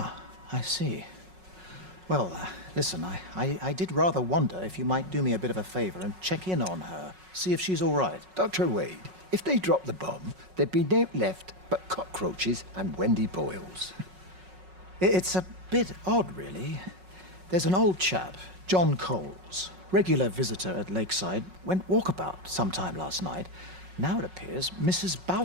I see. Well, listen, I did rather wonder if you might do me a bit of a favor and check in on her, see if she's all right. Dr. Wade, if they dropped the bomb, there'd be no left but cockroaches and Wendy Boyles. It's a bit odd, really. There's an old chap, John Coles, regular visitor at Lakeside, went walkabout sometime last night. Now it appears Mrs.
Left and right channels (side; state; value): left; late; 5.4 ms